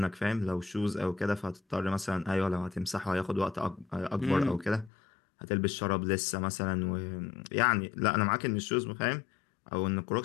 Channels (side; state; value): right; drops out; at 4.9 s